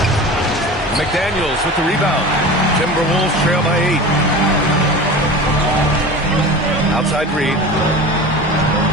McDaniels with the rebound. Timberwolves trail by 8. Outside Reed.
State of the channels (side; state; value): both; normal; correlation 0.34